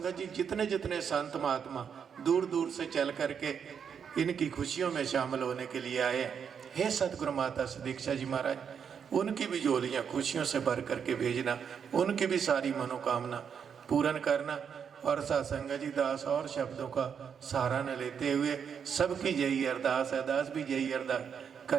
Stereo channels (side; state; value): left; quieter; 7.2 dB